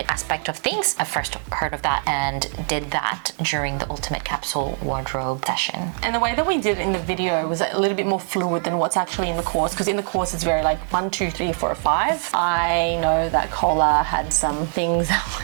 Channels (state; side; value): silent; left; 64 dB below the other